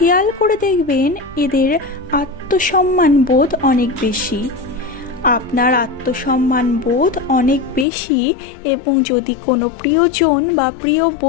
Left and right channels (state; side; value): drops out; right; at 7.9 s